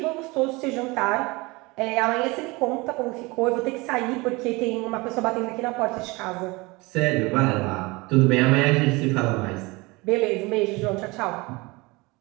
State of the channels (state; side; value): quieter; left; 24.2 dB